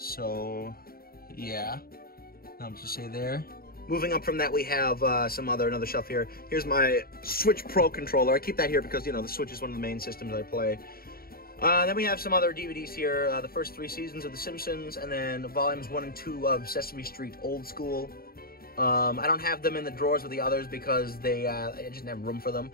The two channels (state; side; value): late; right; 0.43 ms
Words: yeah, not much to say there. Moving up from that, we have another shelf here. Here's my Switch Pro controller. I keep that here because, you know, the Switch is one of the main systems I play. Then we have some other DVDs here. The first 3 seasons of The Simpsons, and then volumes 1 and 2 of Sesame Street Old School. I don't have them in the drawers with the others because I just didn't have room for them.